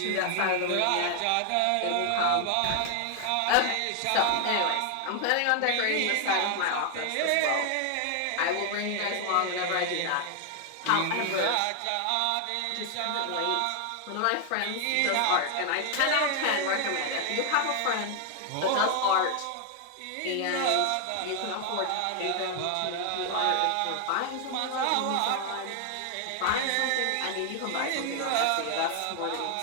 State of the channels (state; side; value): different; both; correlation 0.00